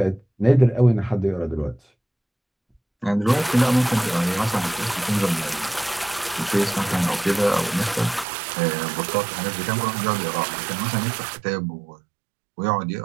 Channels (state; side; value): drops out; left; at 8.2 s